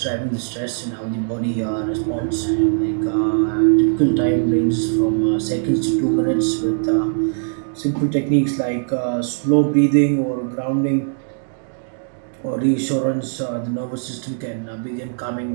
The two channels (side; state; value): left; silent; digital silence